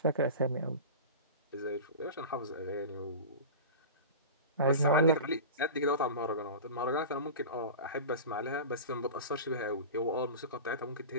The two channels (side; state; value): both; inverted; correlation -0.31